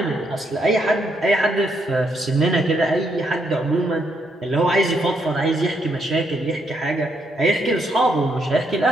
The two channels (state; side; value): normal; both; correlation 0.76